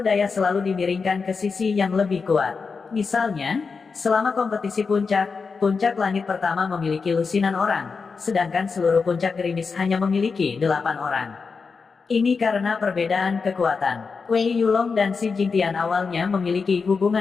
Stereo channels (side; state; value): right; quieter; 5.0 dB